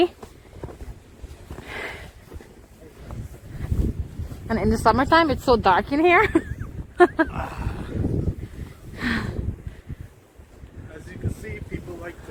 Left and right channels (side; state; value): both; identical; correlation 1.00